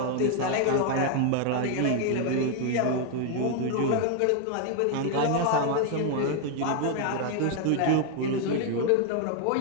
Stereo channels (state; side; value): different; both; correlation 0.00